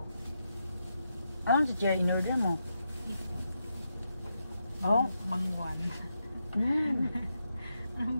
Anong si Jerry in-order mo? Oh? Mangwan.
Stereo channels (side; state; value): both; inverted; correlation -0.84